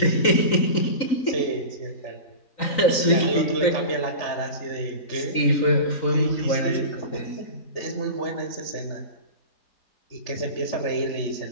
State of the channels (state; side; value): late; right; 3.9 ms